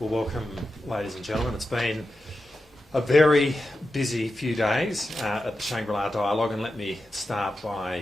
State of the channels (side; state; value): both; normal; correlation 0.90